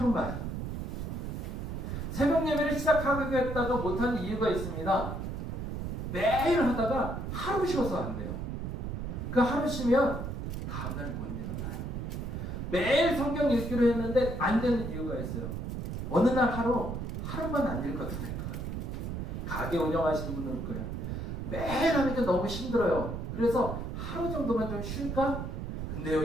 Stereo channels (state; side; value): noise; right; rumble, 4 dB below the sound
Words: 새벽 예배를 시작하겠다가 못하는 이유가 있습니다. 매일 하다가 하루 쉬어서 안 돼요. 그 하루 쉬면 다음날 못 일어나요. 매일 성경 읽기로 했는데 안 되는 이유가 있어요. 어느 날 하루만 안 읽어도 될 거예요. 가게 운영하시는 분들 거예요. 매일 하니까 너무 힘들어요. 그래서 하루 정도만 좀 쉴까? 근데요,